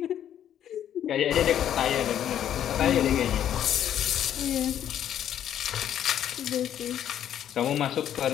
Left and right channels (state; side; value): quieter; right; 10.4 dB